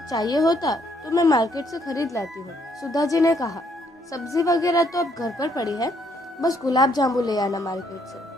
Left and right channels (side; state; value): both; normal; correlation 0.70